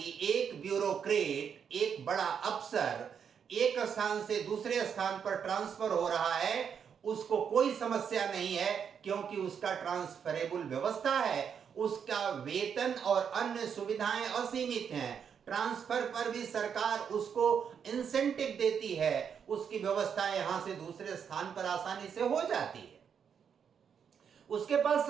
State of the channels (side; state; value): left; quieter; 7.4 dB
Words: एक ब्यूरोक्रेट, एक बड़ा अफसर एक स्थान से दूसरे स्थान पर ट्रांसफर हो रहा है, उसको कोई समस्या नहीं है, क्योंकि उसका ट्रांसफरेबल व्यवस्था है, उसका वेतन और अन्य सुविधाएं असीमित हैं, ट्रांसफर पर भी सरकार उसको इंसेंटिव देती है, उसकी व्यवस्था यहां से दूसरे स्थान पर आसानी से हो जाती है, उसके पास